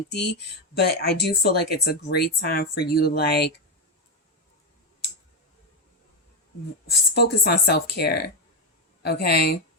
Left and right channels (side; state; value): both; normal; correlation 0.10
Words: But I do feel like it's a great time for you to like focus on self-care. Okay.